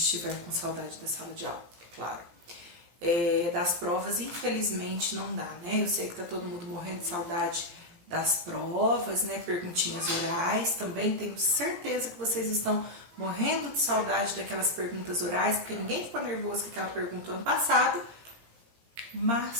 com saudade da sala de aula, é claro. Das provas, infelizmente, não dá, né? Eu sei que tá todo mundo morrendo de saudade das provas, né? Perguntinhas orais, também tenho certeza que vocês estão morrendo de saudade daquelas perguntas orais, porque ninguém ficou nervoso com aquela pergunta ano passado,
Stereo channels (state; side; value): late; left; 17 ms